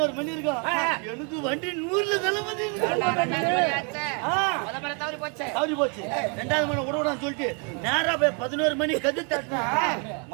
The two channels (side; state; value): left; quieter; 37.1 dB